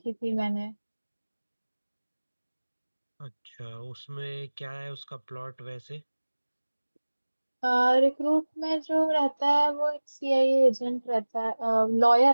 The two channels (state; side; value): inverted; both; correlation -1.00